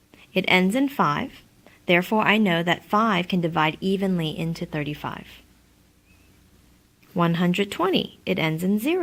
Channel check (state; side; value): identical; both; correlation 1.00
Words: It ends in 5. Therefore, I know that 5 can divide evenly into 35. 120. It ends in